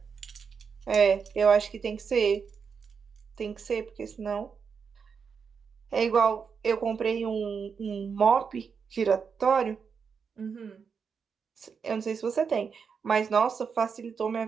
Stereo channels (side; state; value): left; quieter; 6.1 dB